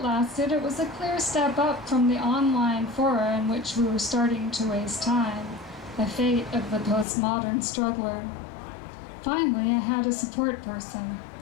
lasted, it was a clear step up from the online fora in which we were starting to waste time, the fate of the postmodern struggler. Finally, I had a support person.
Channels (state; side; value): drops out; right; at 7.1 s